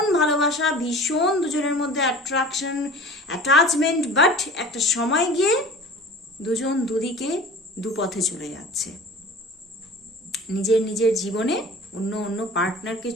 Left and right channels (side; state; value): both; normal; correlation 0.40